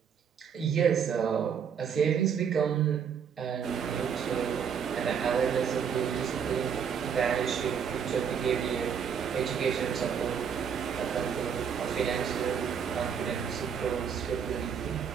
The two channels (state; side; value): quieter; left; 7.3 dB